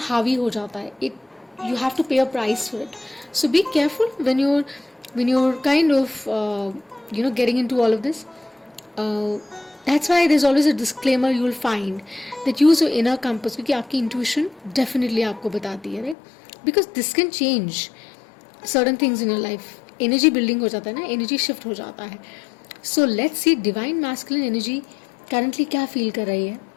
हावी हो जाता है. इट यू हैव टू पे a price for it. So be careful when you're kind of getting into all of this. That's why there's always a disclaimer you will find that use your inner compass, क्योंकि आपकी intuition definitely आपको बताती है, right. Because this can change certain things in your life. Energy building हो जाता है ना, energy shift हो जाता है. So let's see divine masculine energy currently क्या feel कर रही है.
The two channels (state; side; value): drops out; right; at 16.2 s